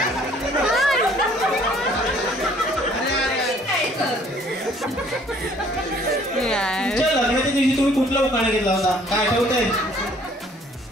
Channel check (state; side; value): normal; both; correlation 0.58